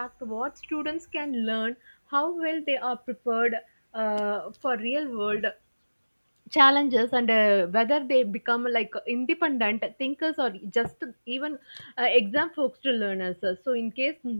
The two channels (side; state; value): both; inverted; correlation -1.00